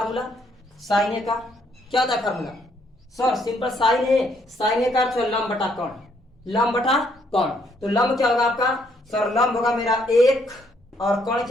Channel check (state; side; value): normal; both; correlation 0.70